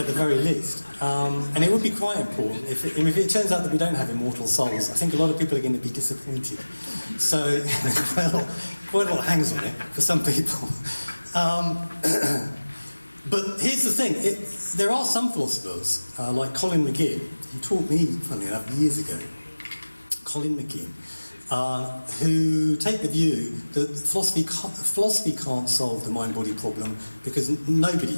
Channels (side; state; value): both; inverted; correlation -1.00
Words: the very least. And it would be quite important if it turns out that we don't have immortal souls. I think a lot of people are going to be disappointed. So, quite a lot hangs on it for some people. But here's the thing. There are some philosophers, like Colin McGinn, who taught me, funny enough, years ago, Colin McGinn, who take the view that philosophy can't solve the mind-body problem because